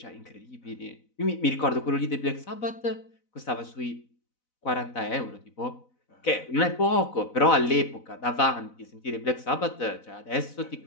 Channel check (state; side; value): late; right; 4.0 ms